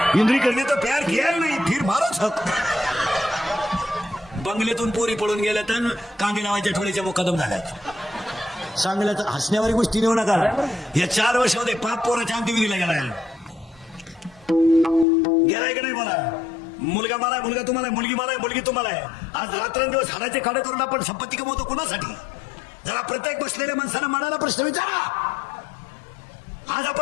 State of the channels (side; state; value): right; drops out; at 15.1 s